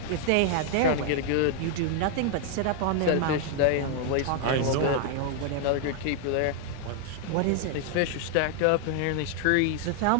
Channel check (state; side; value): different; both; correlation 0.00